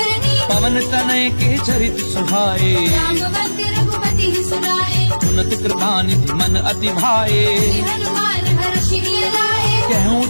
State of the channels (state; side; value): inverted; both; correlation -1.00